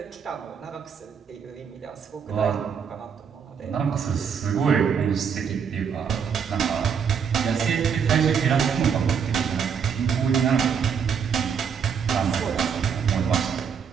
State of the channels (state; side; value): quieter; left; 6.9 dB